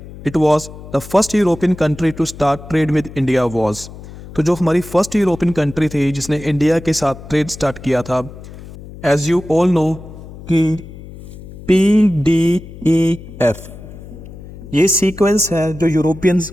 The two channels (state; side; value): noise; left; hum, 15 dB below the sound